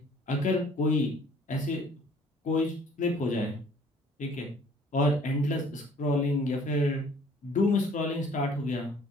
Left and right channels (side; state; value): both; normal; correlation 0.55